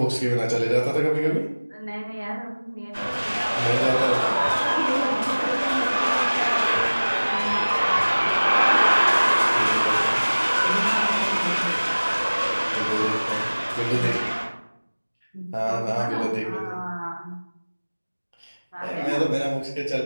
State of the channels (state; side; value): inverted; both; correlation -1.00